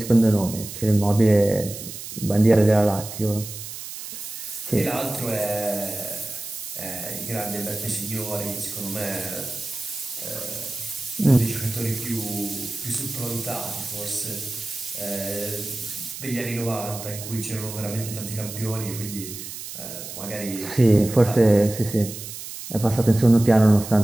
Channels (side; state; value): right; noise; hiss, 10 dB below the sound